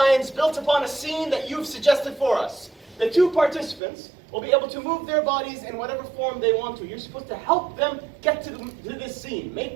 built upon a scene that you've suggested for us. The 2 participants will be able to move their bodies in whatever form they want to. You're supposed to help them get to this scene,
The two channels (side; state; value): left; drops out; at 3.8 s